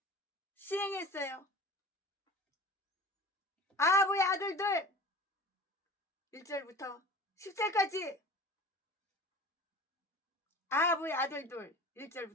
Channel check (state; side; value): normal; both; correlation 0.39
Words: 시행했어요. 아합의 아들들 1절부터 10절까지 아합의 아들들